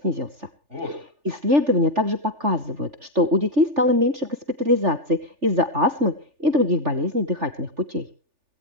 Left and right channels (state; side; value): late; left; 3.4 ms